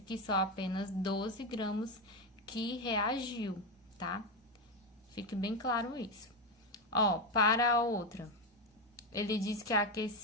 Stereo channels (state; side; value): normal; both; correlation 0.10